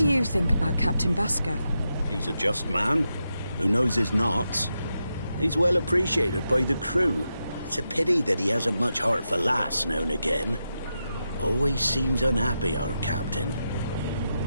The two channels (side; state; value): both; inverted; correlation -0.87